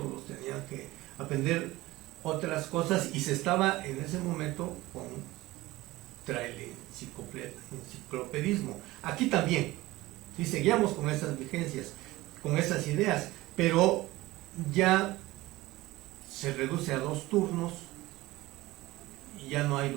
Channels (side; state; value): left; quieter; 18.8 dB